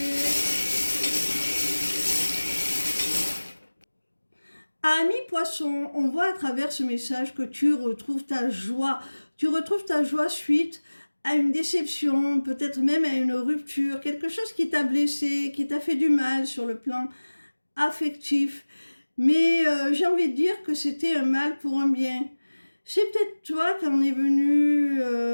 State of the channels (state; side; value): inverted; both; correlation -1.00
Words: Amis poissons, on voit à travers ce message que tu retrouves ta joie. Tu retrouves ta joie suite à une déception, peut-être même à une rupture, quelque chose qui t'a blessé, qui t'a fait du mal sur le plan affectif. Mais j'ai envie de dire que c'était un mal pour un bien. C'est peut-être toi qui en est venu